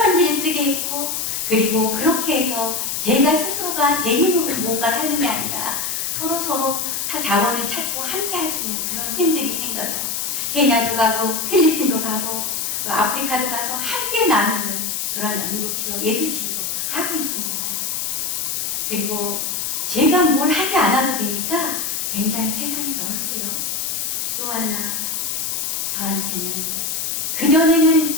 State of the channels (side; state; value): left; noise; hiss, 2 dB below the sound